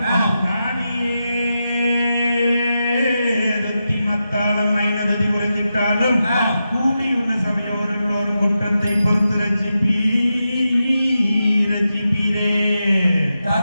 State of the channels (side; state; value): both; inverted; correlation -0.89